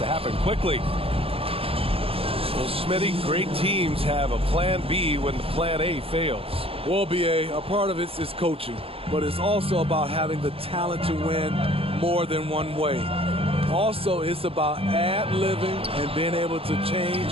happen quickly. Well, Smitty, great teams have a plan B when the plan A fails. Well, BA, a part of it is coaching, but it's also about having the talent to win more than one way. Also, it's about ad-libbing and being able to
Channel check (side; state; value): left; late; 0.27 ms